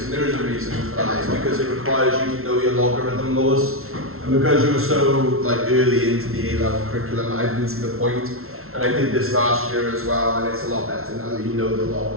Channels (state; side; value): late; left; 0.62 ms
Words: and there is a reason for that. It's because it requires you to know your logarithm laws, and because you were so early into the A-level curriculum, I didn't see the point. And I did this last year as well, and it's a lot better now that you know the